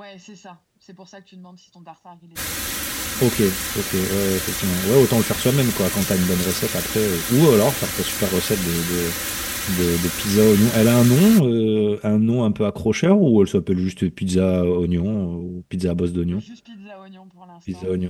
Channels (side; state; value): both; identical; correlation 1.00